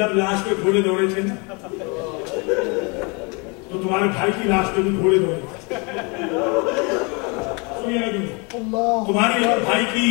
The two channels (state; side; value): quieter; right; 31.1 dB